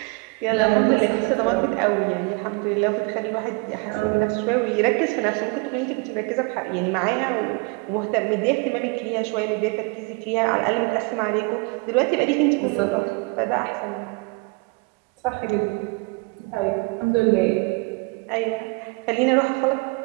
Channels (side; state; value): left; quieter; 30.2 dB